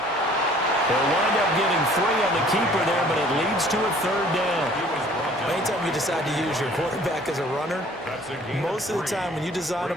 They'll wind up getting 3 on the keeper there, but it leads to a 3rd down. Anytime you decide to use your quarterback as a runner, most of the time when you design a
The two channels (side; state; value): both; normal; correlation 0.54